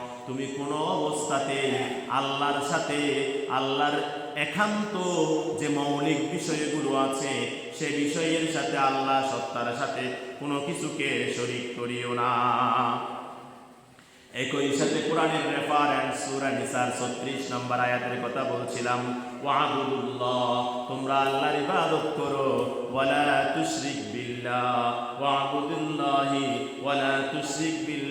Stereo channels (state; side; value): identical; both; correlation 1.00